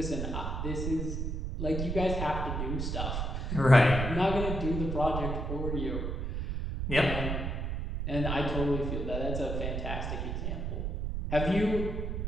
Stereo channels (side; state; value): right; noise; rumble, 2 dB below the sound